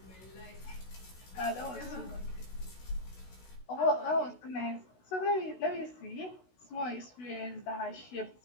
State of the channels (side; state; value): right; late; 16 ms